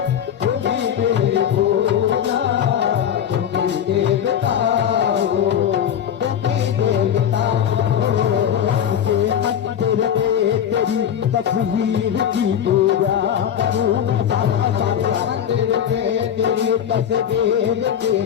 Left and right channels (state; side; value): quieter; right; 9.3 dB